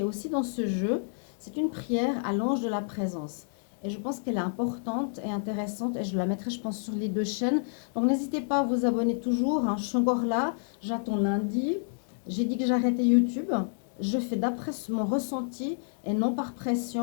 est aussi dans ce jeu. C'est une prière à l'ange de la présence. Et je pense qu'elle est importante et intéressante et je la mettrai, je pense, sur les 2 chaînes. Donc n'hésitez pas à vous abonner toujours, hein. Je suis encore là, j'attends lundi. J'ai dit que j'arrêtais YouTube. Je fais d'après mon ressenti et non par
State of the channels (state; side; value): silent; right; digital silence